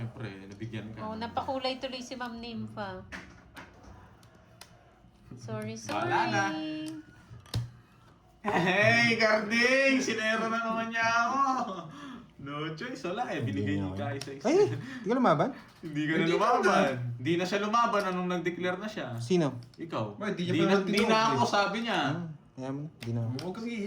Nabigyan ka. Oh, napakulay tuloy si Ma'am Nympha. Sorry. Wala na. Hey, Carding! Sinero na naman niya ako! No choice, wala eh. Binigay niyo ka isa-isa. Ay, hindi ka lumaban? Hindi ka na lumaban. Hindi na siya lumaban anong nag-declare na siya. Sino? Ikaw. Ba, di niya pa Di na tinawag ako, eh. sabi niya. Kaya mo na, hindi na ako. Huwag kang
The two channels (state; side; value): identical; both; correlation 1.00